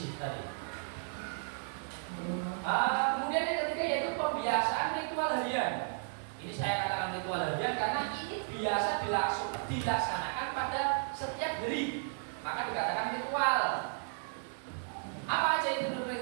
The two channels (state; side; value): silent; left; digital silence